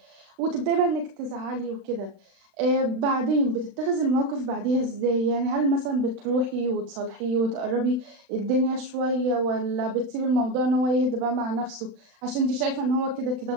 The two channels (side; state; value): left; late; 36 ms